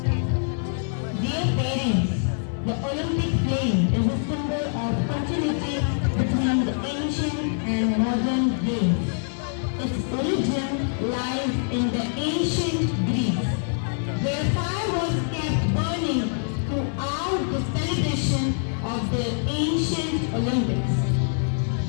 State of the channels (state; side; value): silent; right; digital silence